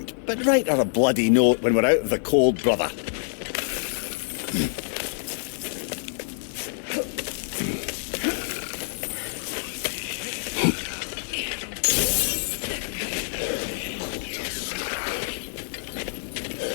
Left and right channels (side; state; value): right; silent; 61 dB below the other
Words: but write her a bloody note when we're out of the cold, brother.